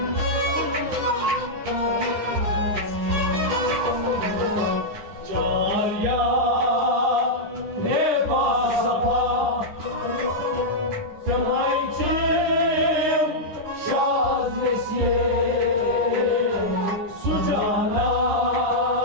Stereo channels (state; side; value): late; left; 9.8 ms